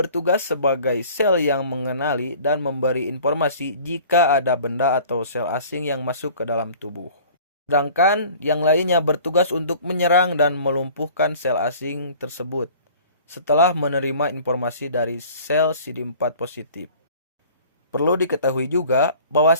sebagai sel yang mengenali dan memberi informasi jika ada benda atau sel asing yang masuk ke dalam tubuh. Sedangkan yang lainnya bertugas untuk menyerang dan melumpuhkan sel asing tersebut setelah menerima informasi dari sel CD4 positif. Perlu diketahui juga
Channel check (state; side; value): inverted; both; correlation -0.47